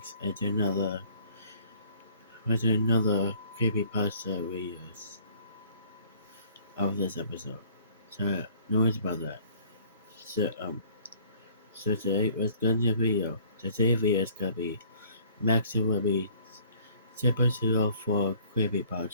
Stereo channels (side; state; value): both; inverted; correlation -0.55